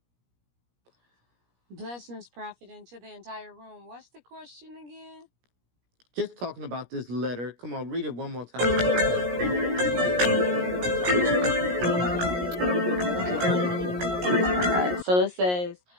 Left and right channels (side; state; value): left; late; 17 ms